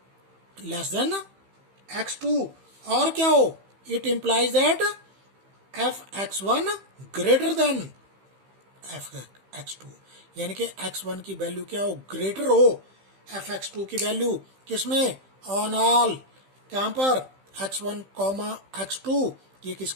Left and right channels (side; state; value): left; late; 15 ms